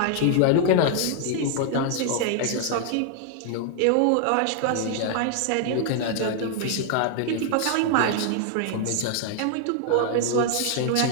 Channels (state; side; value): different; both; correlation 0.00